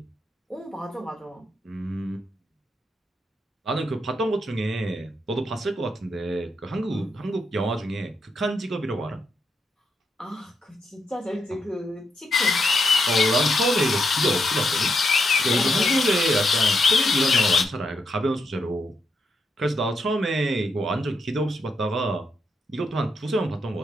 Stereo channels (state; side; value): normal; both; correlation 0.80